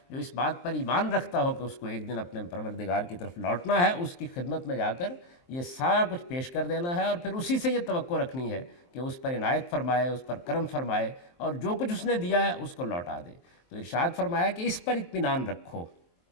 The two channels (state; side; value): late; right; 23 ms